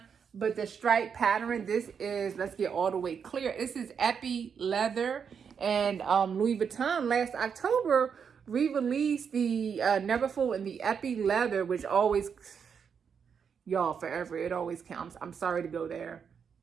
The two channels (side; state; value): left; quieter; 6.8 dB